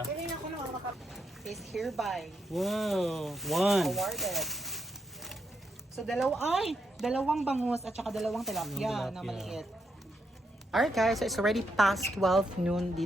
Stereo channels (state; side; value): normal; both; correlation 0.80